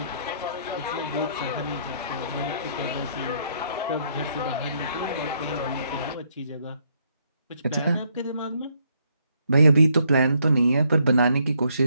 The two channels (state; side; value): inverted; both; correlation -0.72